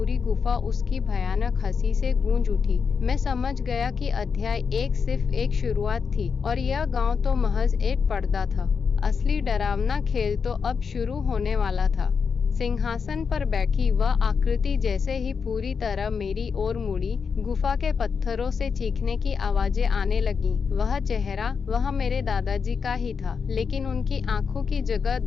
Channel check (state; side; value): quieter; right; 5.8 dB